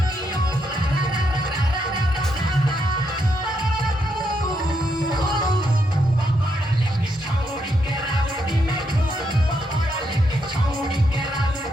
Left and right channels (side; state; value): both; normal; correlation 0.79